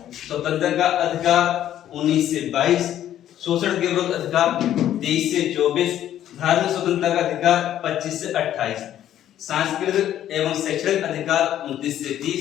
स्वतंत्रता का अधिकार 19 से 22। शोषण के विरुद्ध अधिकार 23 से 24। धार्मिक स्वतंत्रता का अधिकार 25 से 28। सांस्कृतिक एवं शैक्षणिक अधिकार 29 से 30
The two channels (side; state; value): right; quieter; 11.5 dB